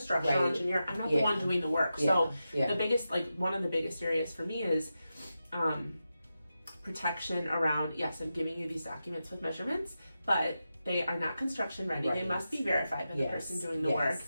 engineer, I'm not the one doing the work. So the biggest, one of the biggest areas for me is protection around, I'm giving you these documents with measurements, but they are not construction ready. They must be verified by the person doing the work.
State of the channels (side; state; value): both; inverted; correlation -0.90